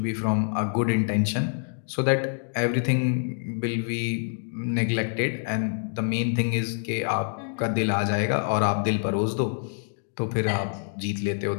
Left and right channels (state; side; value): silent; right; digital silence